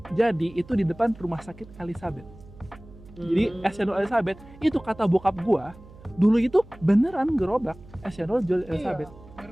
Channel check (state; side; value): noise; right; hum, 20 dB below the sound